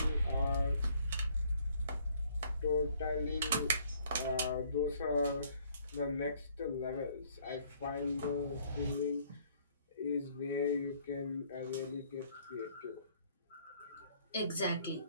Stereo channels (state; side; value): inverted; both; correlation -0.62